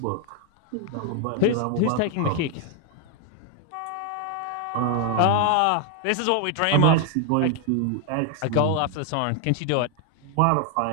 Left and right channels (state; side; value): different; both; correlation 0.00